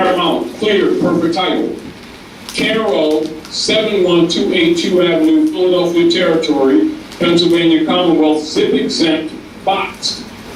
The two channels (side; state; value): both; identical; correlation 1.00